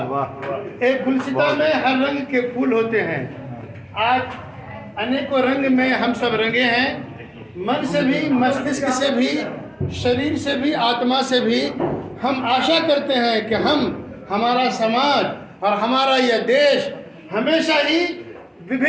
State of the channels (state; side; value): identical; both; correlation 1.00